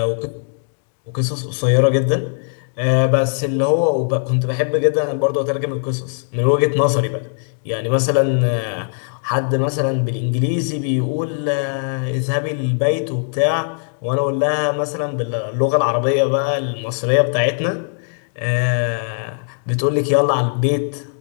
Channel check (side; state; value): right; silent; digital silence